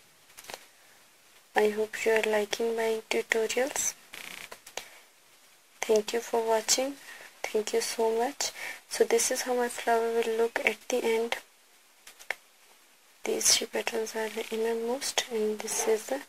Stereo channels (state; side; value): identical; both; correlation 1.00